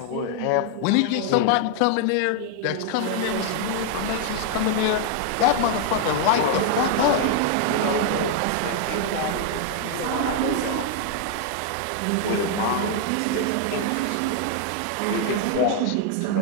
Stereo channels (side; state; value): both; different; correlation 0.00